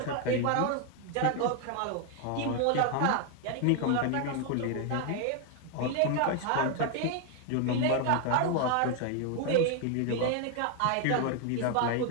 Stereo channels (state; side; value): different; both; correlation 0.00